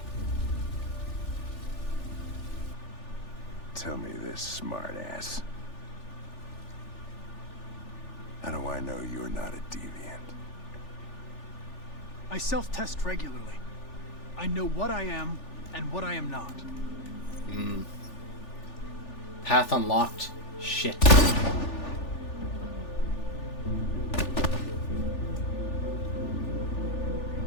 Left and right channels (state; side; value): late; right; 3.4 ms